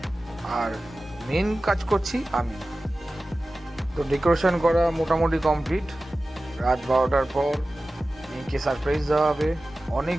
আর মেন কাজ করছি আমি। তো ডেকোরেশন করা মোটামুটি কমপ্লিট। রাত 12টার পর মেয়েকে সারপ্রাইজ দেওয়া হবে। অনেক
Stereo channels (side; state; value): both; normal; correlation 0.96